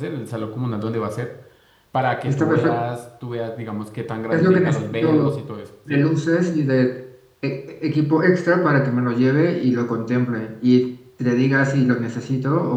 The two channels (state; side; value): identical; both; correlation 1.00